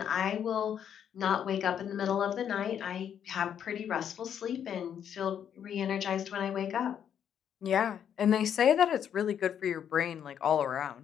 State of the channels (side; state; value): right; quieter; 8.9 dB